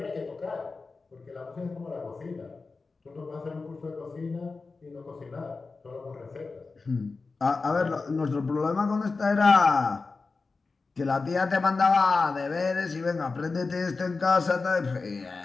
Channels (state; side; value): quieter; right; 4.1 dB